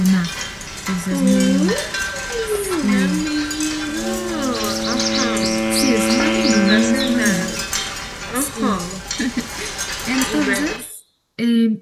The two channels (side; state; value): both; identical; correlation 1.00